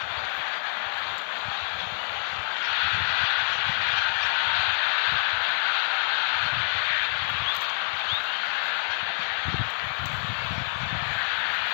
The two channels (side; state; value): right; silent; digital silence